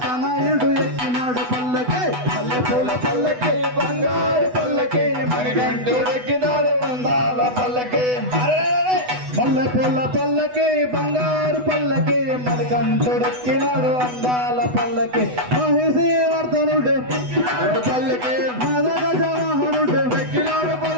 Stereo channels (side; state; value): left; late; 8.1 ms